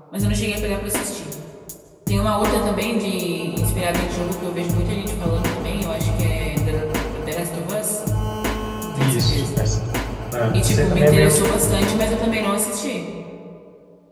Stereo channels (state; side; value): identical; both; correlation 1.00